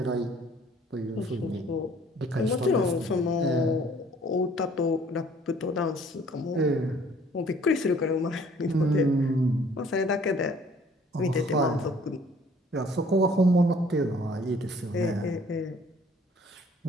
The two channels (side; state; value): both; normal; correlation 0.56